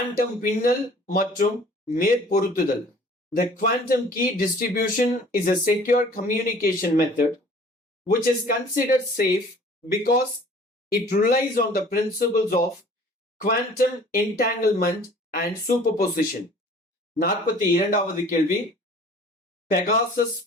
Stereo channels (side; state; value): both; normal; correlation 0.50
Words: பின்னல் மற்றும் மேற்பொருத்துதல். The quantum key distribution is a secure communication method which is considered safe because it relies on the principles of quantum entanglement and superposition. 42வது கேள்வி, பெகாசஸ்